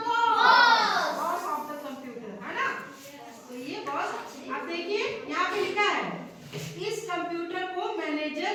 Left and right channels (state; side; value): identical; both; correlation 1.00